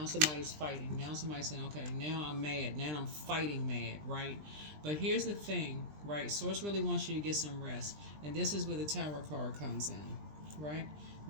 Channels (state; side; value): late; left; 20 ms